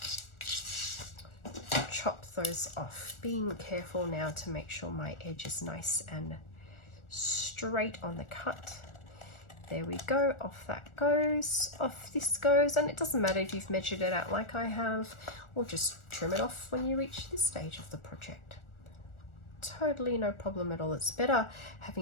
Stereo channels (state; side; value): late; right; 1.4 ms